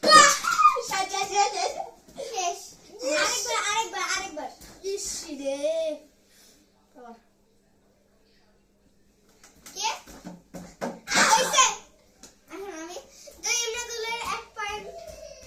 শেষ আরেকবার ইসি রে আবার কে হইছে এখন আমি তো ইমরাদুলের 1 পয়েন্ট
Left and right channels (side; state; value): both; identical; correlation 1.00